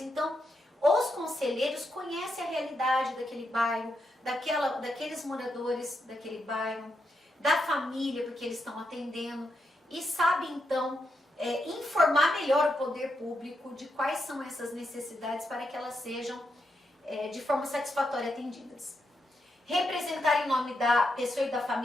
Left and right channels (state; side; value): normal; both; correlation 0.83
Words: os conselheiros conhecem a realidade daquele bairro, daqueles moradores daquele bairro, da família, porque eles estão atendendo, e sabem então informar melhor o poder público de quais são essas necessidades para que elas sejam de forma satisfatória atendidas. Representar em nome da pessoa e da